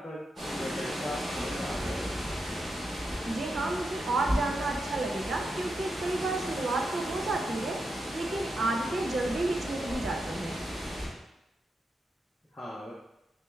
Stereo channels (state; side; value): normal; both; correlation 0.86